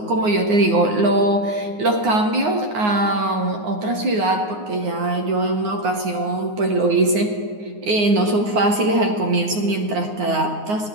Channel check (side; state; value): left; late; 9.6 ms